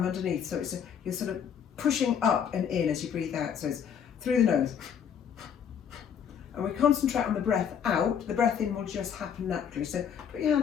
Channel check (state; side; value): quieter; right; 8.0 dB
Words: underneath, so you're sort of pushing up and in as you breathe out, so it's through the nose. And we concentrate on the breath out. The breath in will just happen naturally, so put your